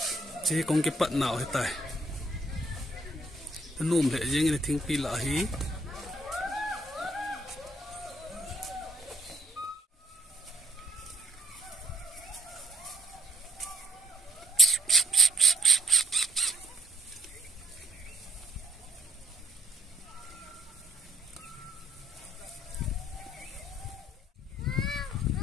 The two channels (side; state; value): both; normal; correlation 0.67